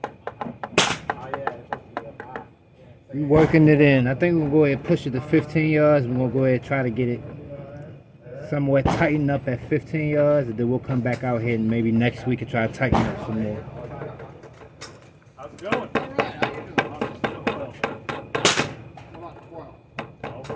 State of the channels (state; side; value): identical; both; correlation 1.00